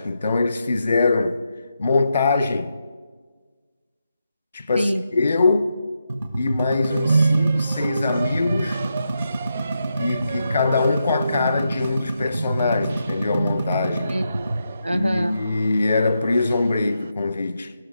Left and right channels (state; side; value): inverted; both; correlation -0.85